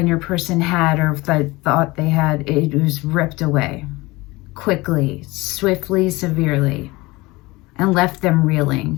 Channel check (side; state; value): right; quieter; 21.8 dB